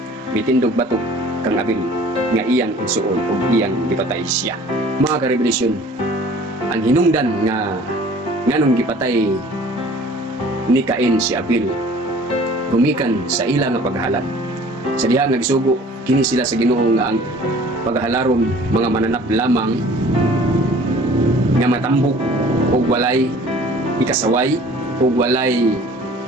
mitindog batok kang Abel nga iyang igsuon og iyang gipatay siya. Mga karebelasyon, ang hinungdan nga nganong gipatay ni Cain si Abel gumikan sa ila nga paghahalad. Sa diha nga gisugo kini sila sa Ginoo nga ang paghalaron mga mananap lamang nga matambok o walay ikasaway o walay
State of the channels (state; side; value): normal; both; correlation 0.49